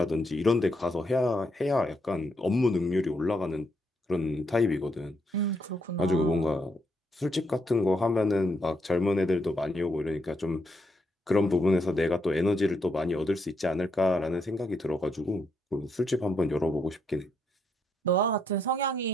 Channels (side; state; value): both; normal; correlation 0.77